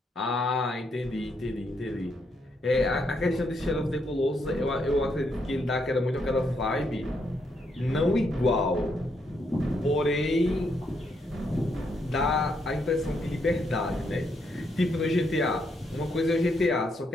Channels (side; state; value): both; normal; correlation 0.77